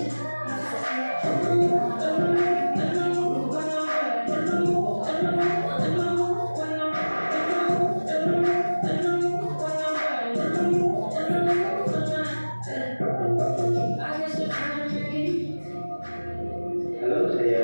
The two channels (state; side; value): inverted; both; correlation -1.00